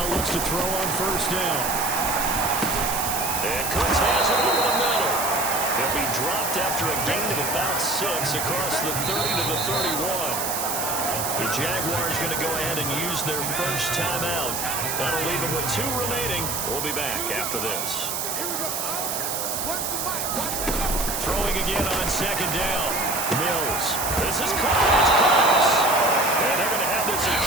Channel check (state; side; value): noise; right; hiss, 2 dB below the sound